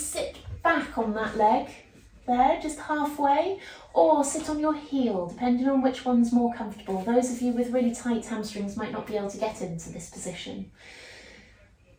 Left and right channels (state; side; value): identical; both; correlation 1.00